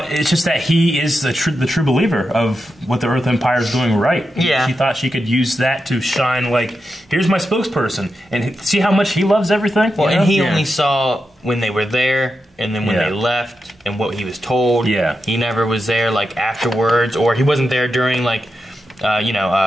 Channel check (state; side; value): normal; both; correlation 0.88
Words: it's just that he is the true believer of what the Earth Empire is doing right. Yeah. She thought she could use that to shine, like, here's my spokesperson. And see how much he loves everything? Well, and he only saw when they were there and then when they left and what he was told. Yeah. He never was there, like, afterwards. Or he wasn't there during, like,